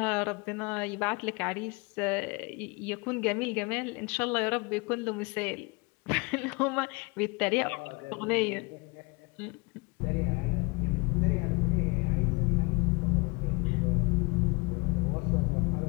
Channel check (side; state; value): right; quieter; 28.6 dB